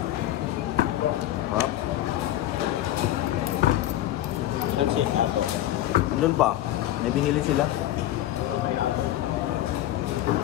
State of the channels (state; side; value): quieter; right; 13.5 dB